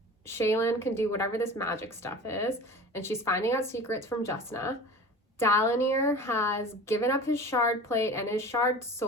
Shaylin can do whatever this magic stuff is, and she's finding out secrets from Justna. Dalinir has given up his shard plate and his shard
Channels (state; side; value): normal; both; correlation 0.37